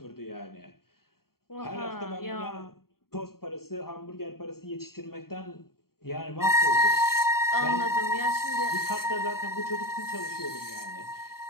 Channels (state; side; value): late; right; 0.93 ms